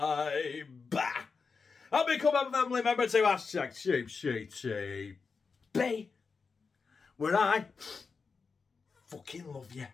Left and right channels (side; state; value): right; quieter; 5.0 dB